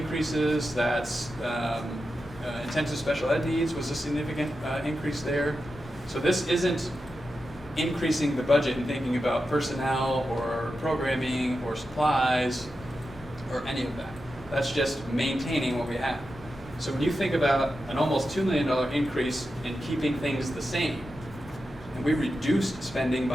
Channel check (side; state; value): both; normal; correlation 0.90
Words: That's intensive special ed needs was a significant increase there. So this isn't increasing the budget and thinking about personnel or programming or supplies or any of that. That's just maintaining what we have. So when you think about an almost $2 million increase in keeping things the same, and we reduced spending